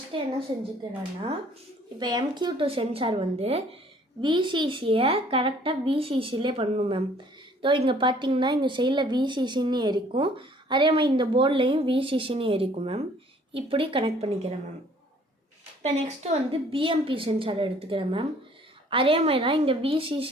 என்ன செஞ்சுக்கிறேன்னா, இப்போ MQ2 சென்சார் வந்து VCCயை கரெக்டாக VCCலே பண்ணணும் மேம். ஸோ இங்கே பார்த்தீங்கன்னா இங்கே சைடில் VCCன்னு இருக்கும், அதே மாதிரி இந்த போர்ட்லேயும் VCCன்னு இருக்கும் மேம். இப்படி கனெக்ட் பண்ணிக்கிறேன் மேம். இப்போ நெக்ஸ்ட்டு வந்து BMP சென்சார் எடுத்துக்கிறேன் மேம். அதே மாதிரி தான் இங்கே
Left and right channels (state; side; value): normal; both; correlation 0.58